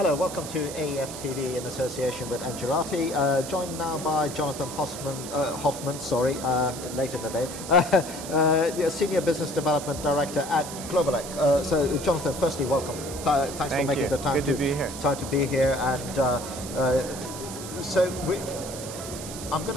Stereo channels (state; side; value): noise; right; hiss, 10 dB below the sound